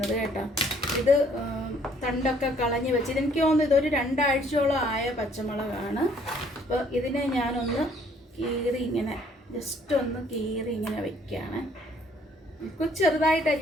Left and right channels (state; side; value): normal; both; correlation 0.62